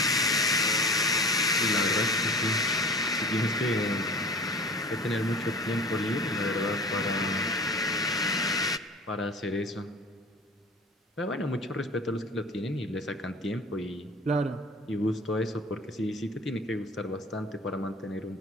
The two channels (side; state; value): both; normal; correlation 0.40